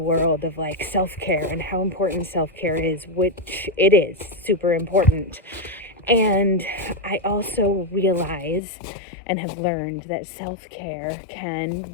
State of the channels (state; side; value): drops out; right; at 8.6 s